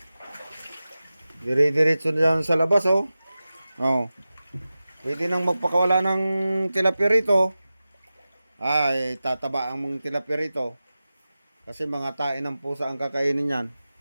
Dire-diretso dyan sa labas, oh. Oh. Pwede nang magpakawala ng tilapia rito. Ay, tataba ang mga tilapia rito. Kasi mga tain ng pusa ang kakainin yan.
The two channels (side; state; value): both; inverted; correlation -0.95